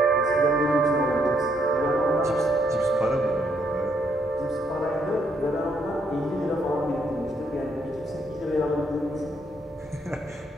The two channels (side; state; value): both; normal; correlation 0.73